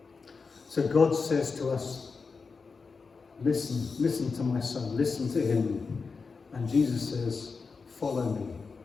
So God says to us, listen to my son, listen to him. And Jesus says, follow me.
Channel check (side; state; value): right; quieter; 4.8 dB